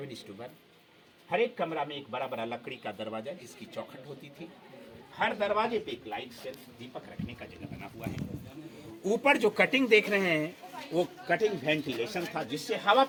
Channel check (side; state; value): both; identical; correlation 1.00